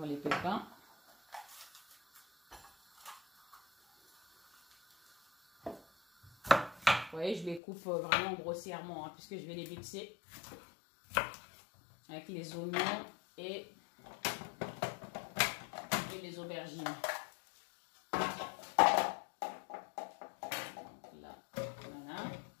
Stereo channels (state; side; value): drops out; right; at 7.6 s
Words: les pépins. Vous voyez, je les coupe vraiment grossièrement, hein, puisque je vais les mixer avec les oignons et les aubergines. Donc là, voilà.